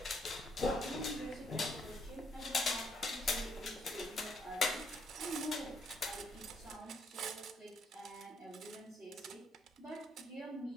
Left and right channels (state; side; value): normal; both; correlation 0.71